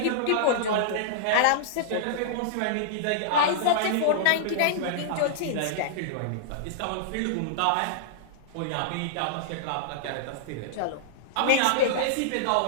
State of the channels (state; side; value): different; both; correlation -0.02